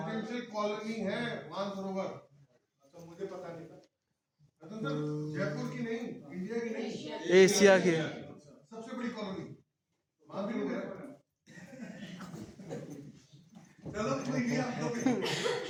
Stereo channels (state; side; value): identical; both; correlation 1.00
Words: कॉलोनी है मानसरोवर। अच्छा, मुझे पता नहीं था। रतन सर, जयपुर की नहीं, इंडिया की नहीं, एशिया की सबसे बड़ी कॉलोनी मानसरोवर है। चलो कोई नहीं,